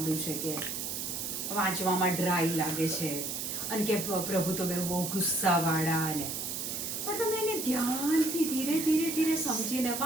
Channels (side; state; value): right; noise; hiss, 4 dB below the sound